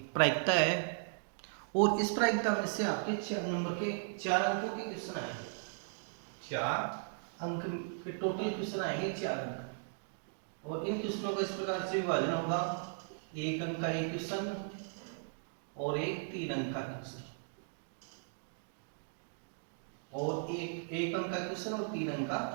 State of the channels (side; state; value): left; silent; digital silence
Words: प्रायिकता है। और इस प्रायिकता में से आपके 4 नंबर के 4 अंकों के क्वेश्चन आएंगे। 4 अंक के टोटल क्वेश्चन आएंगे 4 अंक। और इन क्वेश्चनों का इस प्रकार से विभाजन होगा, 1 अंक का एक क्वेश्चन और एक 3 अंक का क्वेश्चन, और एक अंक का क्वेश्चन और 3 अंक का